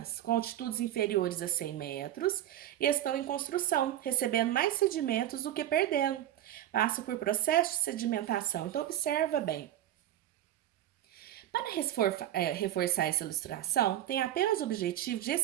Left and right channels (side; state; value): left; quieter; 12.5 dB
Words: com altitudes inferiores a 100 metros, e estão em construção, recebendo mais sedimentos do que perdendo. Passam por processo de sedimentação. Então, observa bem. Para reforçar essa ilustração, tem apenas o objetivo de